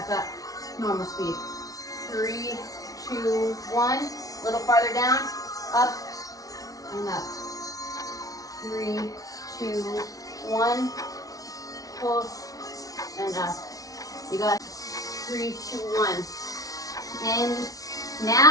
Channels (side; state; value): right; late; 0.18 ms